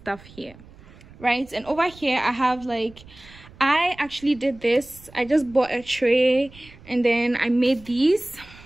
here, right? And over here I have like, I actually did this. I just bought a tray and then I made these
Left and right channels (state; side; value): noise; right; rumble, 22 dB below the sound